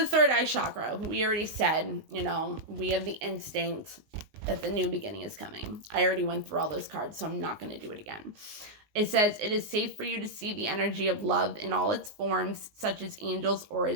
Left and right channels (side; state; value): left; late; 19 ms